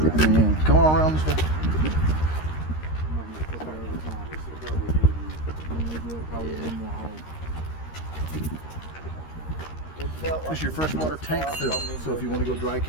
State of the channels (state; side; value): late; right; 13 ms